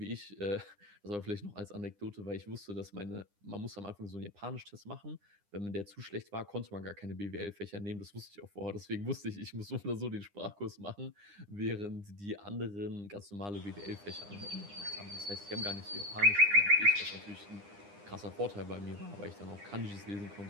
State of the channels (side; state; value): left; late; 9.9 ms